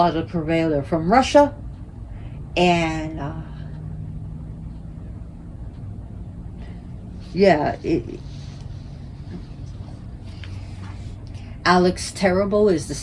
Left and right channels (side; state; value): both; identical; correlation 1.00